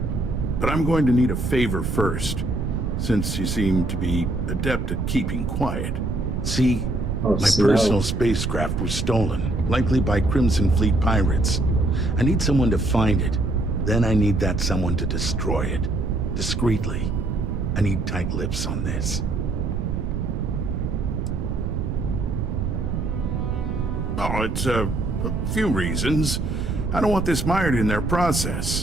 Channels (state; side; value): noise; right; rumble, 2 dB below the sound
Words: But I'm going to need a favor first, since you seem to be adept at keeping quiet. See, my personal spacecraft was stolen, likely by Crimson Fleet pirates. I need someone to find it. Then I need that someone to destroy it. Discreetly. I need tight lips on this. Oh, it's a few reasons. I don't want this mired in their